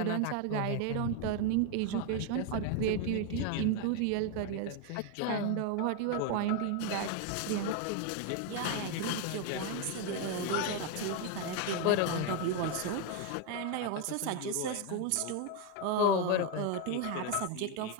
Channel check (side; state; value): both; different; correlation 0.01